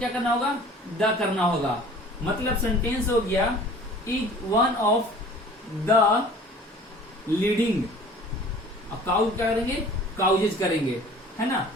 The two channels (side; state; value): both; normal; correlation 0.47